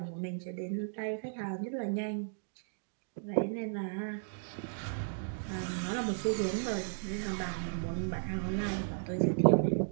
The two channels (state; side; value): silent; left; digital silence